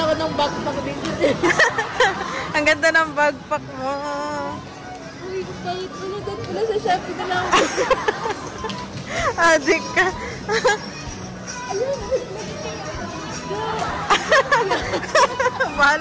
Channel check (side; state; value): both; identical; correlation 1.00